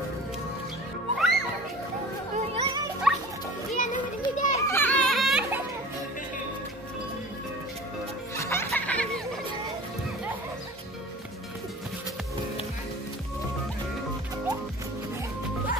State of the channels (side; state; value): both; normal; correlation 0.41